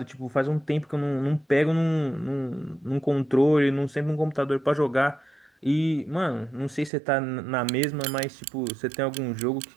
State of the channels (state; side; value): drops out; left; at 6.9 s